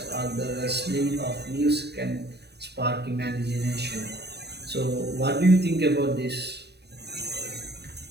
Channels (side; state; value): left; late; 0.48 ms